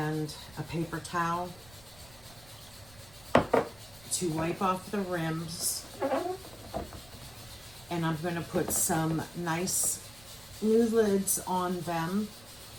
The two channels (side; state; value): right; noise; rumble, 23 dB below the sound